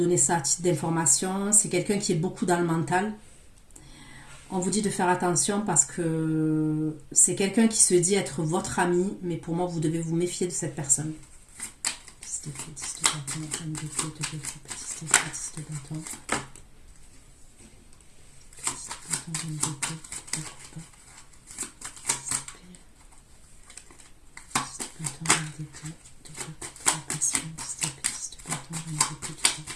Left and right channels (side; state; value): both; identical; correlation 1.00